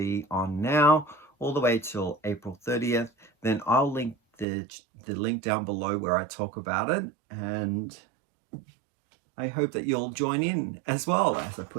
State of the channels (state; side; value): drops out; left; at 4.5 s